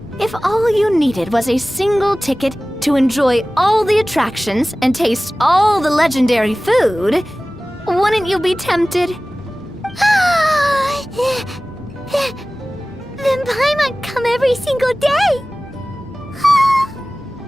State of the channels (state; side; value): normal; both; correlation 0.97